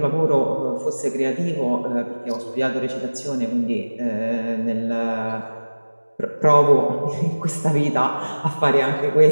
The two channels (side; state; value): both; inverted; correlation -1.00